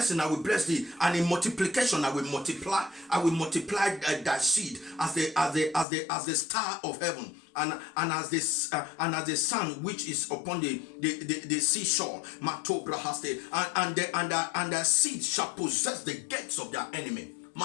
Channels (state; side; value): drops out; right; at 5.9 s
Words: I will bless thee, and in multiplication I will multiply thy seed as the star of heaven, and as the sun which is upon the seashore. And the seed shall possess the gates of their enemy.